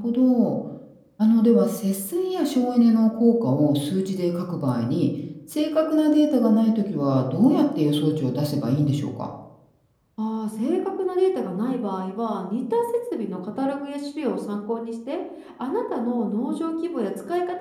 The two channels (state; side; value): identical; both; correlation 1.00